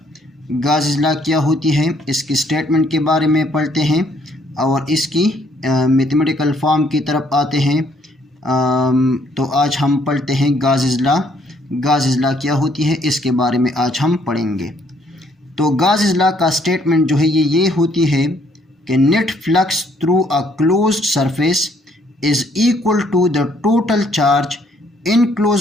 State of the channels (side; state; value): both; normal; correlation 0.66